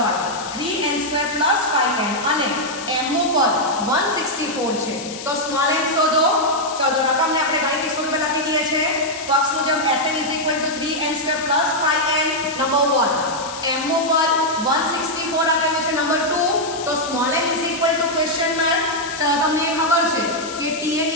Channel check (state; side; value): noise; left; hiss, 11 dB below the sound